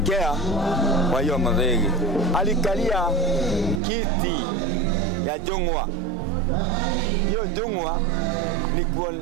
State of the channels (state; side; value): drops out; left; at 3.8 s